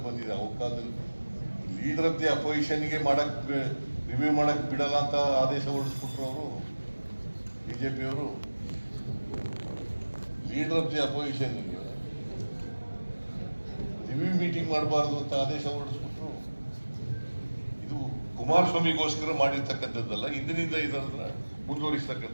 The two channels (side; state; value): both; inverted; correlation -1.00